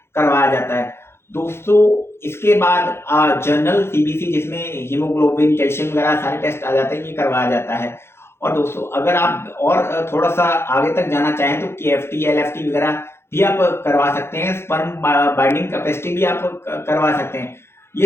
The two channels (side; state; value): right; late; 0.12 ms